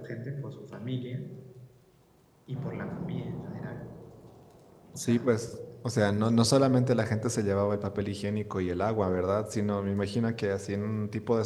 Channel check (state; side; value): identical; both; correlation 1.00